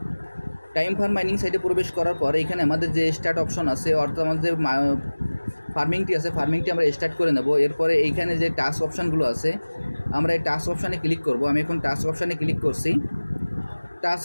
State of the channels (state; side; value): inverted; both; correlation -1.00